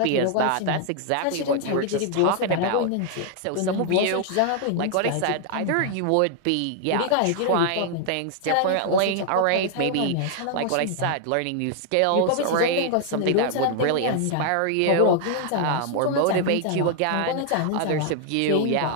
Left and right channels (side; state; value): both; different; correlation 0.00